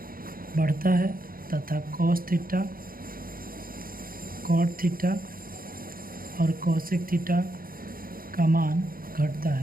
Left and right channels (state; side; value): late; left; 0.42 ms